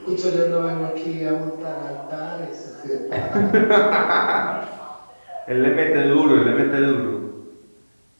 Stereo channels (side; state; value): both; inverted; correlation -1.00